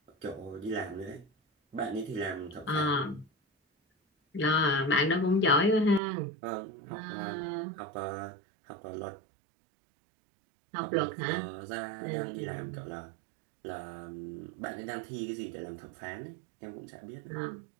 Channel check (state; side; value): drops out; left; at 6.0 s